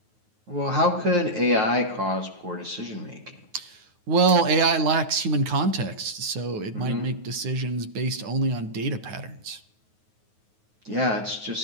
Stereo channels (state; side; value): late; left; 9.4 ms